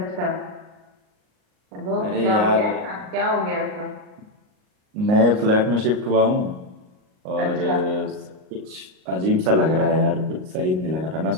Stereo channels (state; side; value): late; left; 38 ms